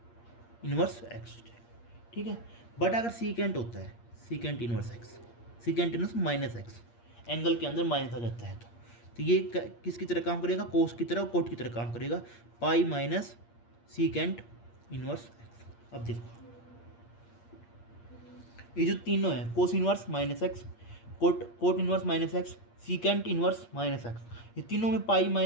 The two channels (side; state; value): right; late; 8.6 ms